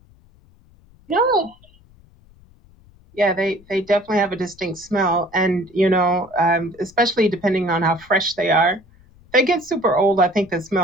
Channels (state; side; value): noise; left; rumble, 28 dB below the sound